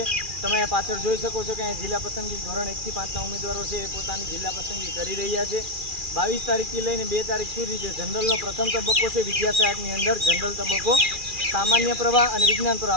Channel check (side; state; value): left; late; 2.4 ms